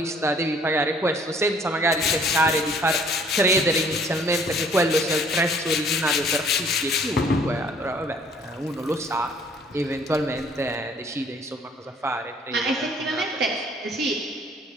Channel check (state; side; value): normal; both; correlation 0.58